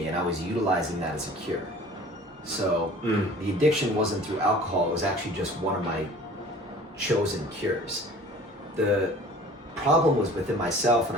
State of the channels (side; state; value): both; normal; correlation 0.46